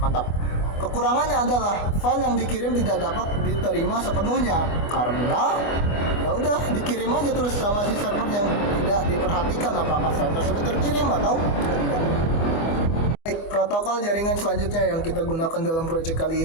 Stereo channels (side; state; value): right; late; 24 ms